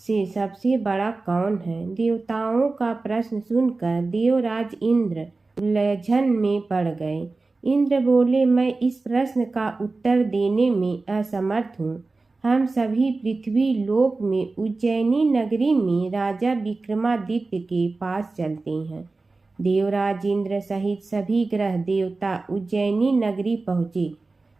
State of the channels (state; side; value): quieter; left; 3.6 dB